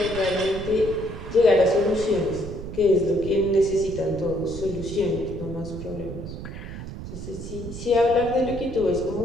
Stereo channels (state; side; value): noise; right; rumble, 9 dB below the sound